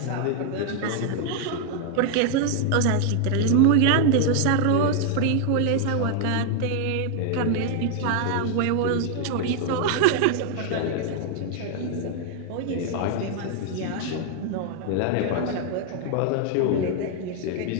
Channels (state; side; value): different; both; correlation 0.00